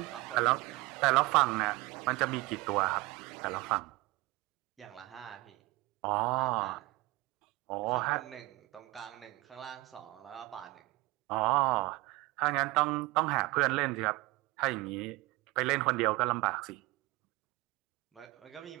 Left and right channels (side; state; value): left; quieter; 21.7 dB